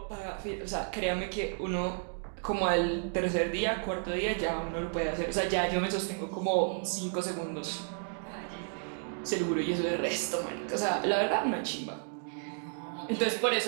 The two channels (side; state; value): left; silent; 56 dB below the other